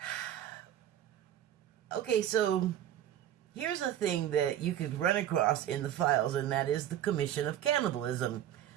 okay, so here's a thing that you could run across in the files, and that is the commission of cannibalism.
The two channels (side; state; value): left; quieter; 11.4 dB